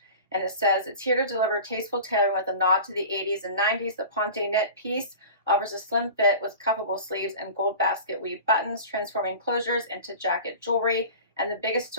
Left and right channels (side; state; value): both; inverted; correlation -0.37